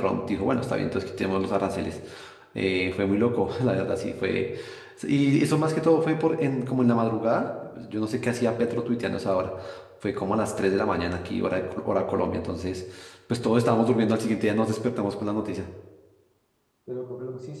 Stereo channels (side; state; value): both; identical; correlation 1.00